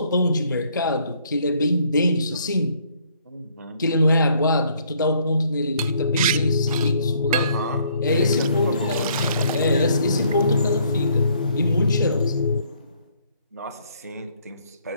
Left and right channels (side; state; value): both; inverted; correlation -0.65